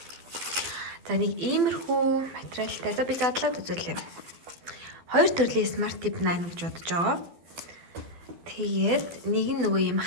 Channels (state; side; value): late; left; 12 ms